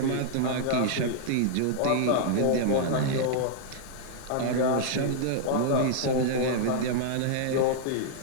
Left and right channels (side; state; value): both; different; correlation -0.01